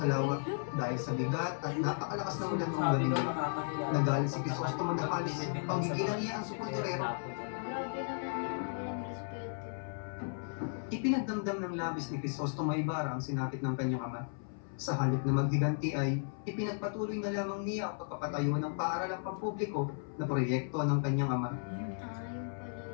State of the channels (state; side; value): silent; right; 54 dB below the other